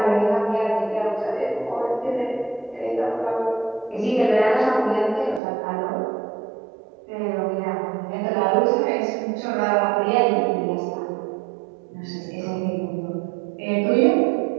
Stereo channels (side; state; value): left; drops out; at 5.4 s